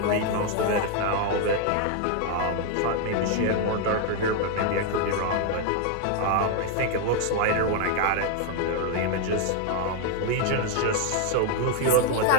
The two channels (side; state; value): both; different; correlation 0.01